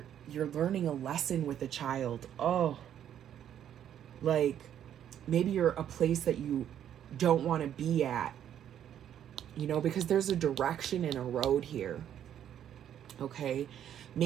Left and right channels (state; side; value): quieter; left; 10.1 dB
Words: you're learning a lesson with a child. Oh, like maybe you're a place that you don't want to be at, you know, because there's a direction and a road here. Okay,